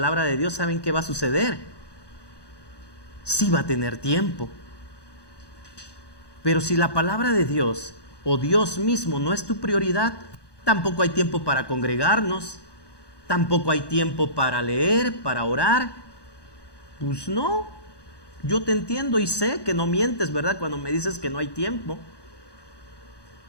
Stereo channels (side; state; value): right; late; 1.2 ms